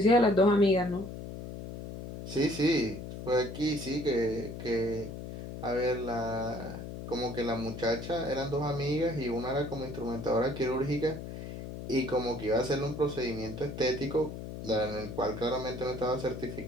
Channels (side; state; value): left; noise; hum, 9 dB below the sound